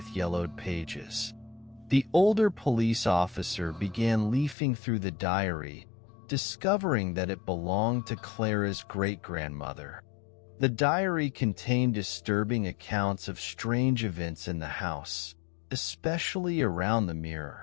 yellowed pages. The older police officer began leafing through the diary, discovering that it belonged to Clara's great-grandmother. The diary contained disturbing accounts of strange events in the house, especially around the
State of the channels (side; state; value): right; drops out; at 4.5 s